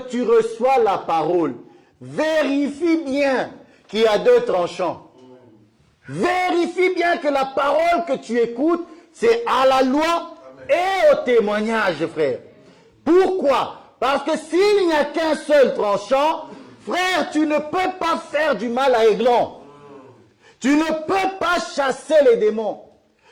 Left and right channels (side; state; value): both; identical; correlation 1.00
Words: tu reçois la parole, vérifie bien qu'il y a 2 tranchants. Vérifie bien que la parole que tu écoutes, c'est à la loi et au témoignage, frère. Pourquoi? Parce que s'il n'y a qu'un seul tranchant, frère, tu ne peux pas faire du mal à Eglon. Tu ne peux pas chasser les démons.